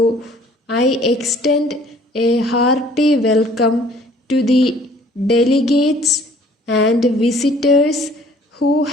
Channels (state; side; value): normal; both; correlation 0.56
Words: I extend a hearty welcome to the delegates and visitors who